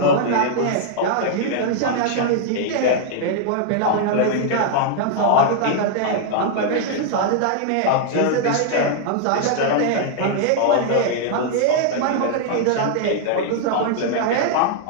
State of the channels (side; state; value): both; different; correlation -0.01